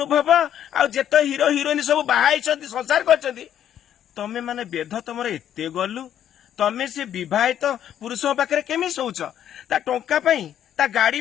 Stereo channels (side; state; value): right; quieter; 10.3 dB